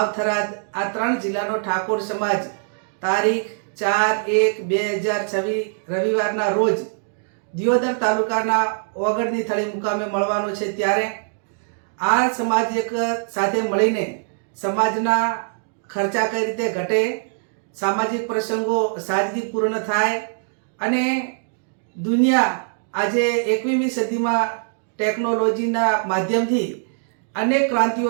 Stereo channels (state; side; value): silent; left; digital silence